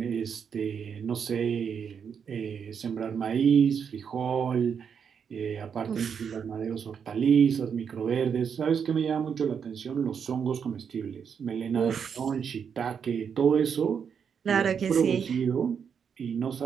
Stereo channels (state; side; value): quieter; left; 7.0 dB